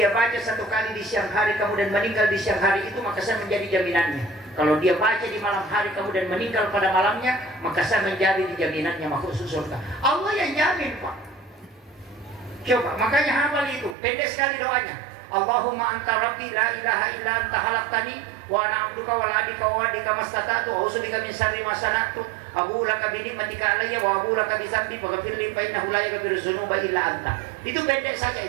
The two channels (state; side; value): drops out; left; at 14.0 s